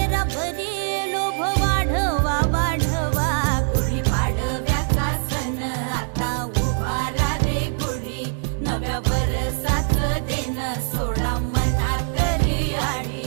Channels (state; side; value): silent; left; 64 dB below the other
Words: भरी लोभ वाढवा वाढवा। गुढी पाडव्याचा सण आता उभारा रे गुढी, नव्या वर्षाच दिन सोडा मनातली आढी।